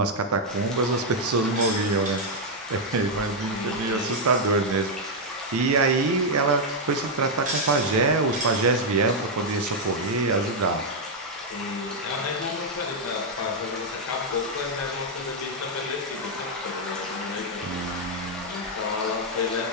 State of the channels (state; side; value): normal; both; correlation -0.01